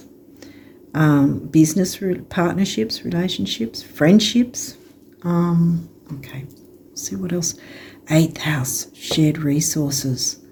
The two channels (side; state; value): both; identical; correlation 1.00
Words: business partnerships, relationships, friendships. Okay, see what else. 8th house, shared resources.